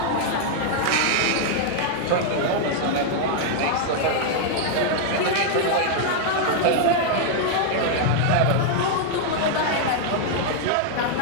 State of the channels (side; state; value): both; different; correlation -0.01